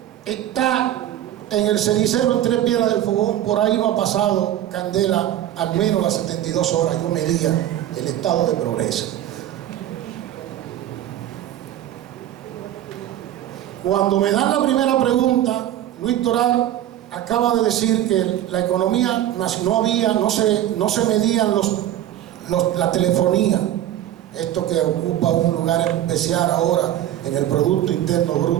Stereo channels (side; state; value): left; quieter; 12.3 dB